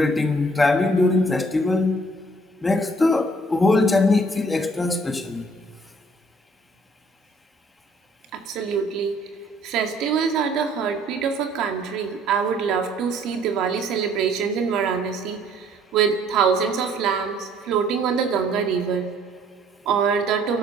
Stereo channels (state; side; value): normal; both; correlation 0.60